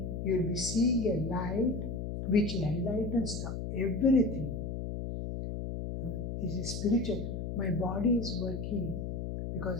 you'll be seeing a light which enlightens everything. This is spiritual. My body is working because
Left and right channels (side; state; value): left; noise; hum, 4 dB below the sound